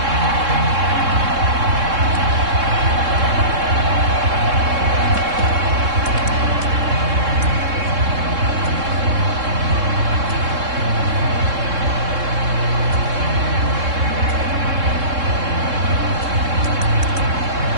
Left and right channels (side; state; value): left; late; 3.7 ms